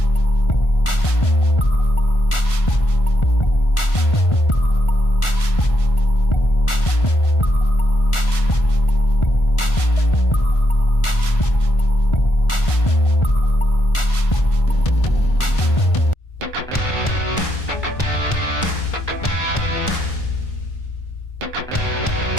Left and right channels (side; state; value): right; late; 1.4 ms